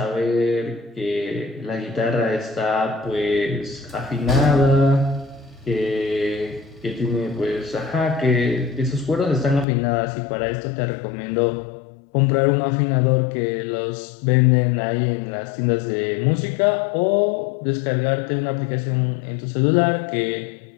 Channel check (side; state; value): right; drops out; at 9.7 s